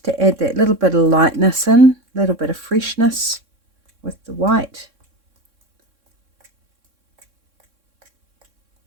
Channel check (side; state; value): left; late; 3.6 ms